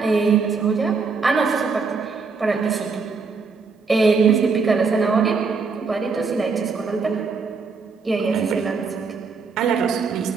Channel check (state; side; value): quieter; left; 4.8 dB